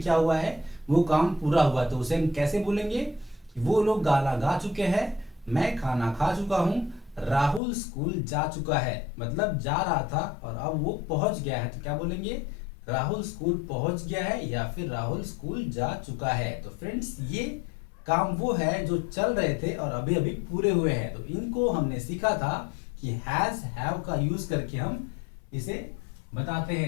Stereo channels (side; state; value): right; drops out; at 7.6 s